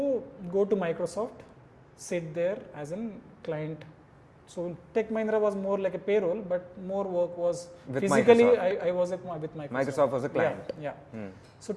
go to Microsoft, sit there as a client. So Tech Mahindra was more like a payroll, but more work was with physically. Microsoft. I was with Microsoft. Microsoft was a client. Yeah. So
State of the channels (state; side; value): identical; both; correlation 1.00